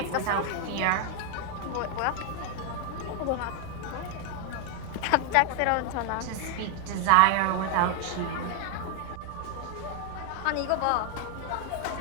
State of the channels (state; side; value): different; both; correlation 0.00